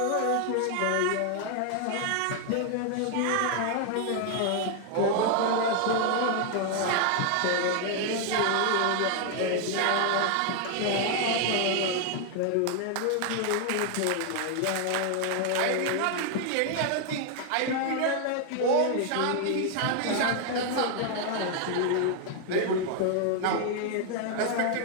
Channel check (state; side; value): different; both; correlation 0.00